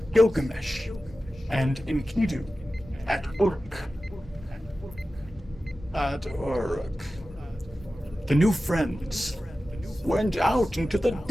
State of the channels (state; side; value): normal; both; correlation 0.95